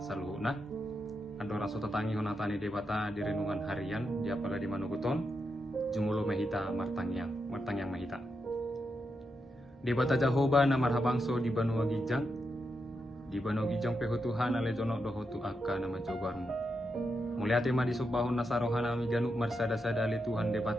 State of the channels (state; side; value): normal; both; correlation 0.85